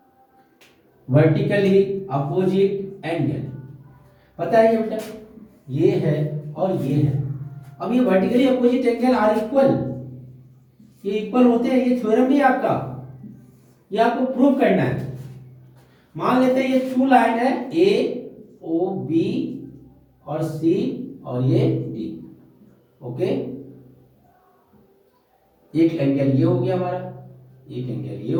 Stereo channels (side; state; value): both; identical; correlation 1.00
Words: Vertically opposite angle पता है ये बेटा, ये है और ये है. अब ये vertically opposite angle are equal, ये इक्वल होते हैं, ये थ्योरम भी आपका, ये आपको प्रूव करना है. मान लेते हैं ये टू लाइन है ए ओ बी और सी और ये डी. ओके. एक एंगल ये हो गया हमारा, एक एंगल ये